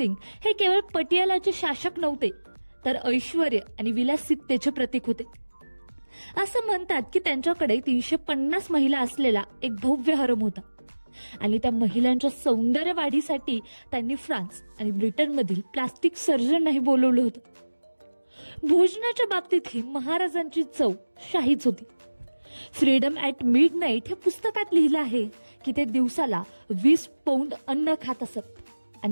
हे केवळ पटियालाचे शासक नव्हते, तर ऐश्वर्य आणि विलासिततेचे प्रतीक होते. असं म्हणतात की त्यांच्याकडे 350 महिला असलेला एक भव्य हरम होता आणि त्या महिलांच्या सौंदर्य वाढीसाठी त्यांनी फ्रान्स आणि ब्रिटनमधील प्लास्टिक सर्जनही बोलवलं होतं. भोजनाच्या बाबतीतही महाराजांची चव शाहीच होती. फ्रीडम ॲट मिडनाईट हे पुस्तकात लिहिलं आहे की ते दिवसाला 20 पौंड अन्न खात असत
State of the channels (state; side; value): inverted; both; correlation -1.00